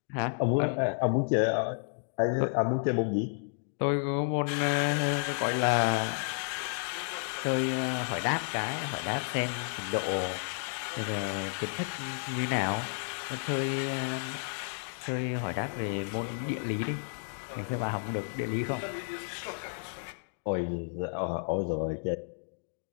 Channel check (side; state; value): right; silent; digital silence